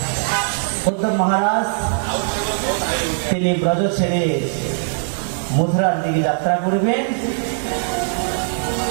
উদ্ধব মহারাজ তিনি ব্রজ ছেড়ে মথুরার দিকে যাত্রা করবেন,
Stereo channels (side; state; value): left; silent; 57 dB below the other